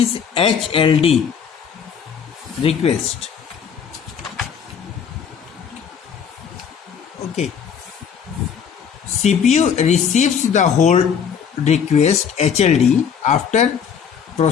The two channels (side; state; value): right; quieter; 7.3 dB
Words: HLD request. Okay. CPU receives the hold request HLD after